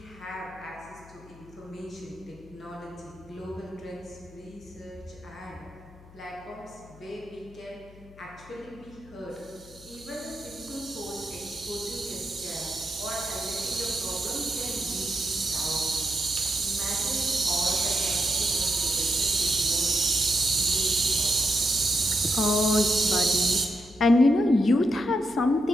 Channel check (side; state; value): left; noise; hum, 22 dB below the sound